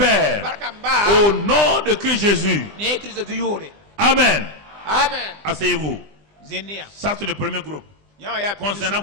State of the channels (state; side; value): late; left; 20 ms